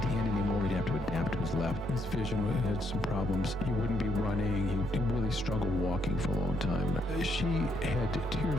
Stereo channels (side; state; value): both; normal; correlation 0.75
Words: hand anymore. He'd have to adapt to his left. His vision had some problems. He wouldn't be running. He really struggled walking for a long time. She had